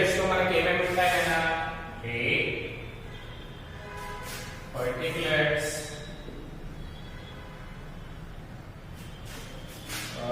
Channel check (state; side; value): identical; both; correlation 1.00